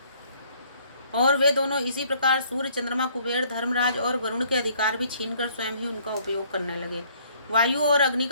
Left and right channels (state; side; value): inverted; both; correlation -0.61